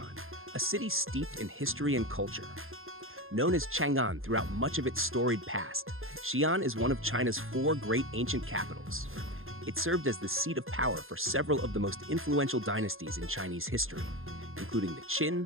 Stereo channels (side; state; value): left; late; 0.60 ms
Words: a city steeped in history and culture. Known as Chang'an throughout much of its storied past, Xi'an is one of China's four great ancient capitals. It served as the seat of power for several of the most influential dynasties in Chinese history, including the